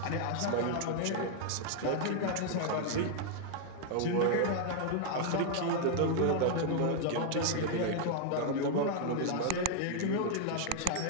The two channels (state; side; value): different; both; correlation 0.00